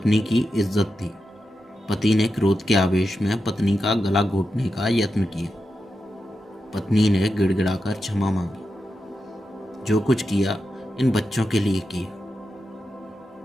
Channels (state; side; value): normal; both; correlation 0.89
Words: की इज्जत थी। पति ने क्रोध के आवेश में पत्नी का गला घोटने का यत्न किया। पत्नी ने गिड़गिड़ाकर क्षमा मांगी। जो कुछ किया इन बच्चों के लिए किया।